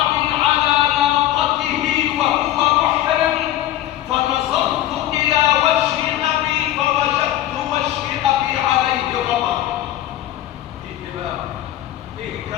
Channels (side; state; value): right; quieter; 13.6 dB